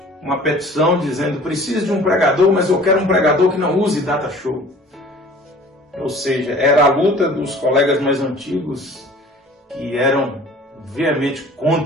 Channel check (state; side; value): normal; both; correlation 0.47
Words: uma petição dizendo: preciso de um pregador, mas eu quero um pregador que não use data show. Ou seja, era a luta dos colegas mais antigos que eram veemente